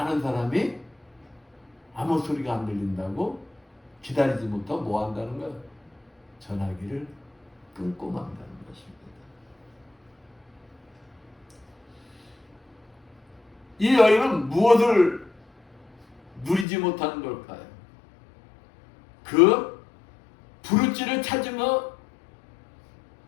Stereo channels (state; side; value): drops out; right; at 16.7 s